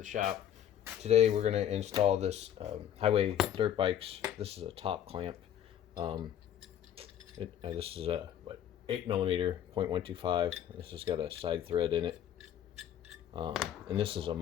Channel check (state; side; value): quieter; right; 10.3 dB